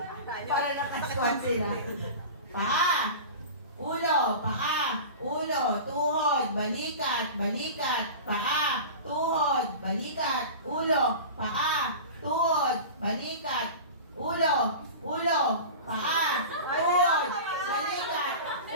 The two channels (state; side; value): inverted; both; correlation -0.33